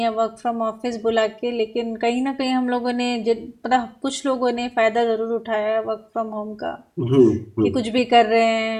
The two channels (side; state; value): both; identical; correlation 1.00